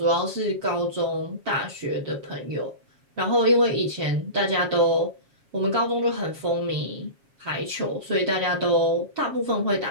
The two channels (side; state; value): left; late; 7.4 ms